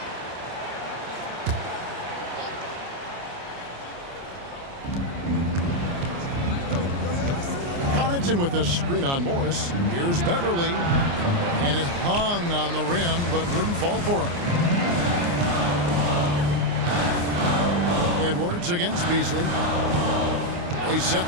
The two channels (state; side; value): late; left; 29 ms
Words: Connaughton with the screen on Morris. Here's Beverly. And it hung on the rim, but wouldn't fall for him. Edwards against Beasley. They set